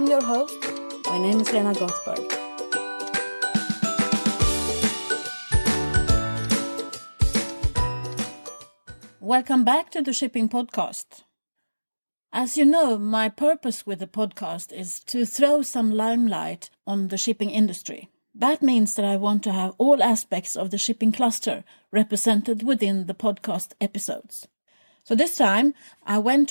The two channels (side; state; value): both; inverted; correlation -1.00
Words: your host. My name is Lena Gothberg. Welcome back to the Shipping Podcast. As you know, my purpose with the podcast is to throw some limelight on the shipping industry. That means that I want to have all aspects of the shipping cluster represented within the podcast episodes. So this time, I went